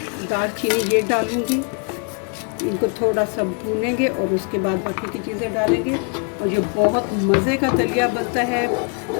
दालचीनी, ये डालूँगी। इनको थोड़ा सा भूनेंगे और उसके बाद बाकी की चीज़ें डालेंगे। और ये बहुत मज़े का दलिया बनता है।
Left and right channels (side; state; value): right; quieter; 38.8 dB